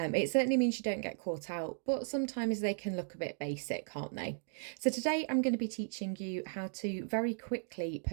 certainly means you don't get caught out, but sometimes they can look a bit basic, can't they? So, today I'm going to be teaching you how to very quickly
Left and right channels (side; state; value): left; silent; digital silence